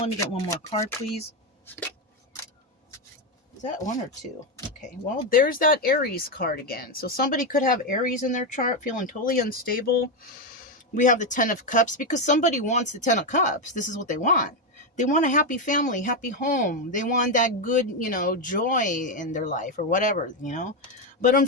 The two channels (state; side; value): normal; both; correlation 0.07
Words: me get one more card, please. Is that one or two? Okay, well, there's that Aries card again. So somebody could have Aries in their chart, feeling totally unstable. We have the Ten of Cups because somebody wants the Ten of Cups. This is what they want. They want a happy family, happy home. They want that good, you know, joy in their life or whatever, you know. But